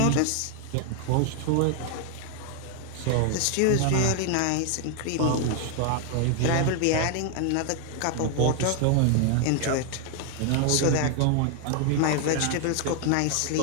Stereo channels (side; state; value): both; different; correlation 0.00